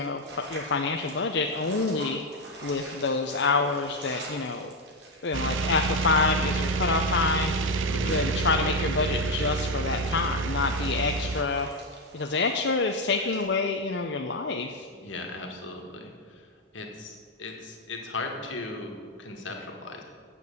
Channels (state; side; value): normal; both; correlation 0.08